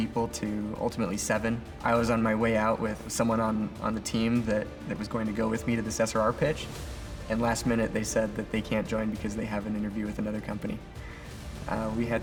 to ultimately 7. I was on my way out with someone on the team that was going to go with me to this SRR pitch. And last minute they said that they can't join because they have an interview with another company. We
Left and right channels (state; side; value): identical; both; correlation 1.00